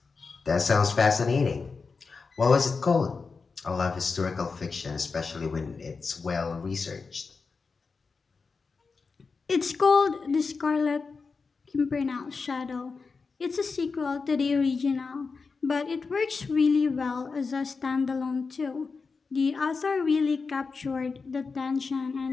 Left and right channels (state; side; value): quieter; right; 4.7 dB